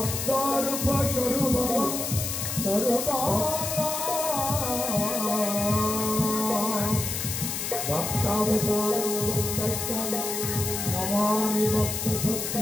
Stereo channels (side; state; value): left; noise; hiss, 3 dB below the sound